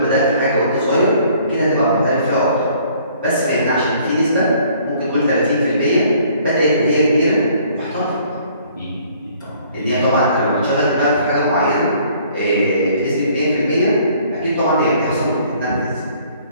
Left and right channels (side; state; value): both; inverted; correlation -0.59